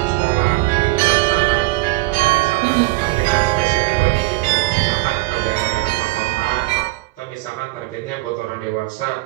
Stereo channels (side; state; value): left; quieter; 20.4 dB